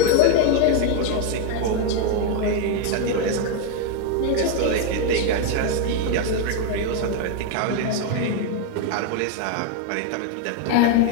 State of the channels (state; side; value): different; both; correlation 0.01